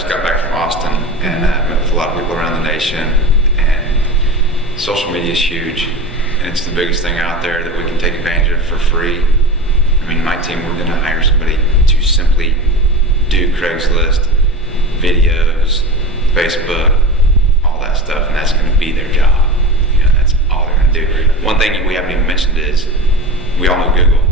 got back from Austin and met with a lot of people around the nation, and social media is huge, and it's the biggest thing out there that we can take advantage of for free. I mean, my team, we're going to hire somebody to simply do Craigslist, videos, Facebook, all that stuff, and that's going to be their job. You know, that's all they're going to do. One thing we haven't even mentioned is, we all know Google,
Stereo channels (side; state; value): both; normal; correlation 0.28